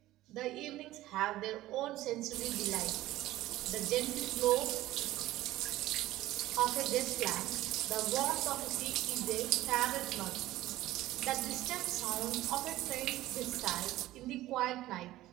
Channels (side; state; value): left; quieter; 15.9 dB